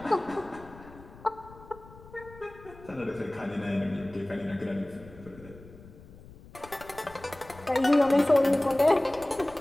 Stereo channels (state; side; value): noise; left; rumble, 20 dB below the sound